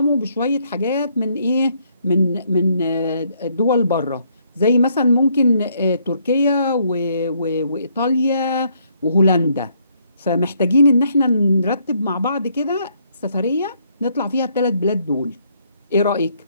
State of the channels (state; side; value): inverted; both; correlation -0.70